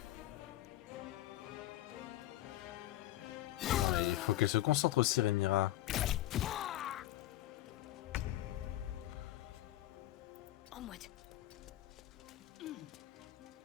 Il faut qu'elle se concentre aussi, Rhaenyra. Onward.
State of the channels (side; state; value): right; quieter; 14.7 dB